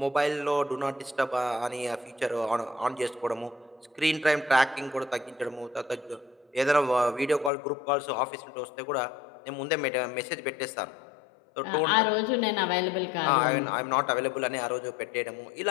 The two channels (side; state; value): right; drops out; at 7.5 s